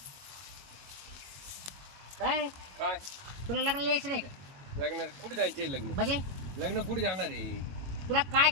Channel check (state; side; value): late; left; 22 ms